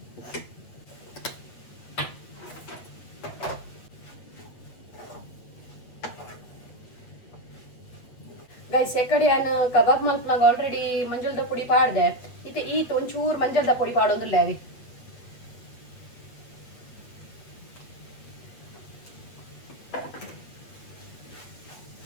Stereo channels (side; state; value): right; late; 8.4 ms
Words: ಗೈಸ್ ಎಕಡೆ ನಾನು ಕಬಾಬ್ ಮಲ್ಪನಾಗ ಆಲ್ರೆಡಿ ಮಂಜಲ್ದ ಪುಡಿ ಪಾಡ್ದೆ ಇತ್ತೆ ಈತ್ ಒಂಚೂರು ಮಂಜಲ್ದ ಪುಡಿ ಪಾಡೊಂದುಲ್ಲ ಅವಿ